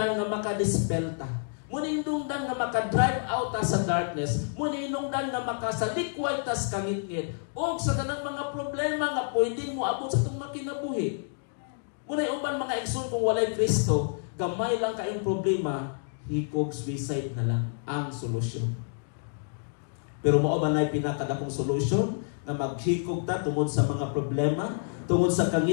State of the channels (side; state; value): right; silent; digital silence